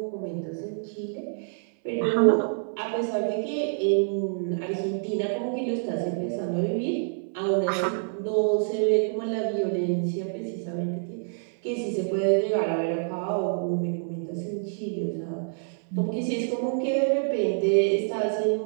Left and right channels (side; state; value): left; silent; 60 dB below the other